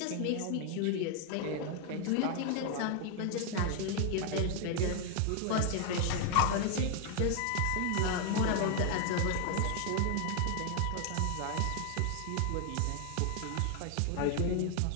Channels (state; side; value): different; both; correlation 0.00